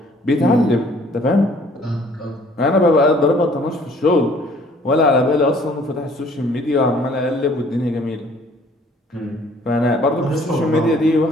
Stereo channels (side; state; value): both; normal; correlation 0.57